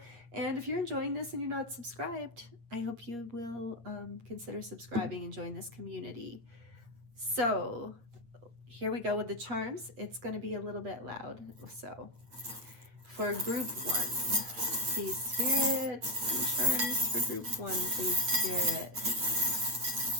And if you're enjoying this and you're not subscribed, I hope you will consider subscribing and join this community. So here we go with the charms. It's going to be a little bit loud. So for group 1, please spirit, charms for group 1, please spirit.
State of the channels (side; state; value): left; late; 8.6 ms